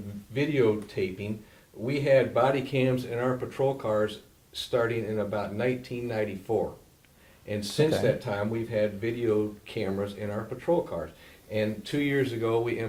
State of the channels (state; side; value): identical; both; correlation 1.00